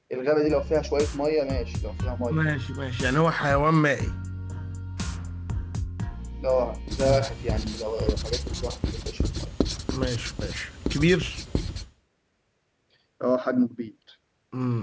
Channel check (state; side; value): identical; both; correlation 1.00